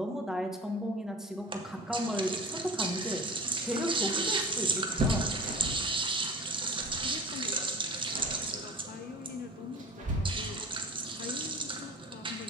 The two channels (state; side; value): normal; both; correlation 0.38